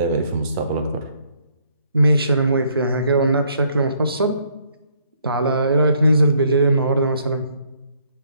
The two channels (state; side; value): inverted; both; correlation -0.67